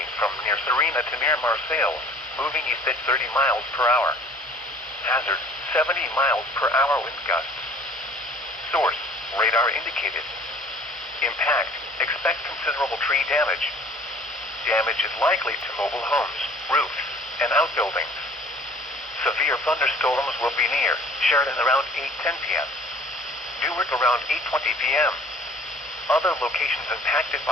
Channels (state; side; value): normal; both; correlation 0.50